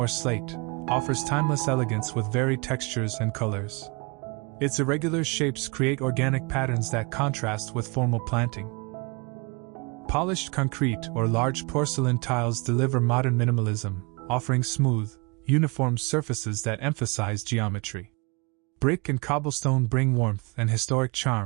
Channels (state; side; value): quieter; left; 29.1 dB